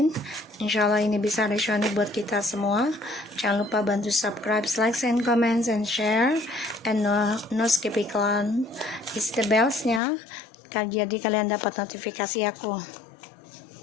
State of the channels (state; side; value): drops out; right; at 10.0 s